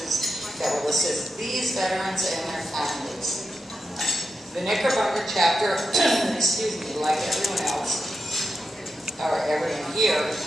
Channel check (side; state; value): both; normal; correlation 0.88